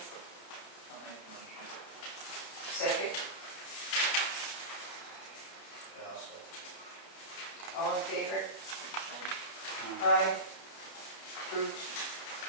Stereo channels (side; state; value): right; late; 31 ms